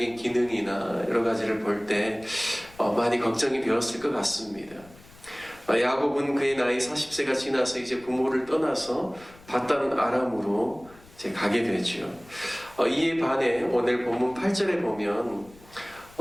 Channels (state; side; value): noise; left; rumble, 24 dB below the sound